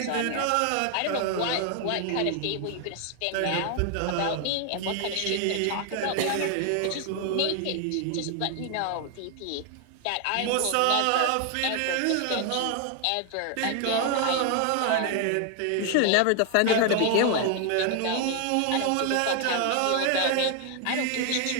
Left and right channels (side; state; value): both; different; correlation 0.00